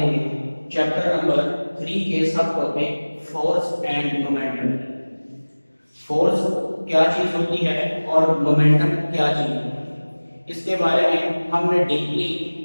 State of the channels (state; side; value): inverted; both; correlation -1.00